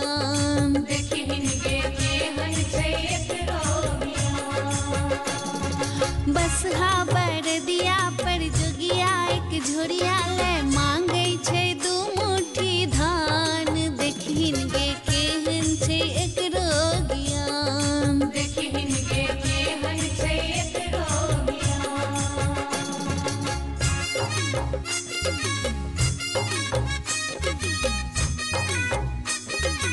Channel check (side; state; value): both; identical; correlation 1.00